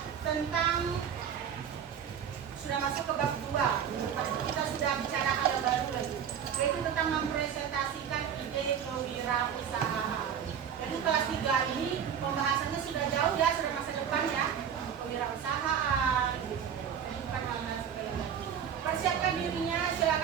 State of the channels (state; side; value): quieter; left; 8.3 dB